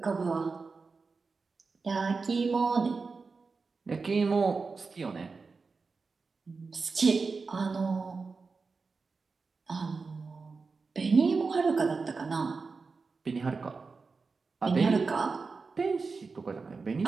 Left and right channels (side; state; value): left; quieter; 4.4 dB